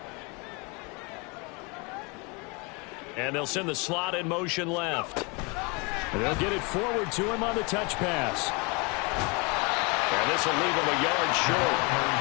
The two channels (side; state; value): right; quieter; 29.8 dB